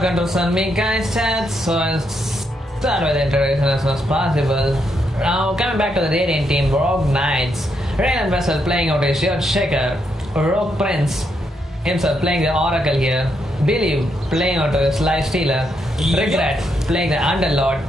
on me, guys, chat. So I'll start with the introduction as soon as possible. Now, coming back to the Radiant team, Rogue Knights. Radiant Vessel playing out his Shield Shaker. Rogue Prince himself playing the Oracle here. Believe playing onto his Life Stealer. Regret playing the Underlord.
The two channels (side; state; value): both; normal; correlation 0.79